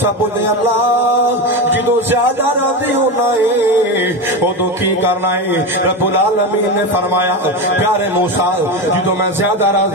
بولے اللہ جدوں زیادہ راضی ہونا ہے ادوں کی کرنا ہے رب العالمین نے فرمایا پیارے موسیٰ جدوں میں زیادہ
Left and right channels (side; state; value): both; normal; correlation 0.19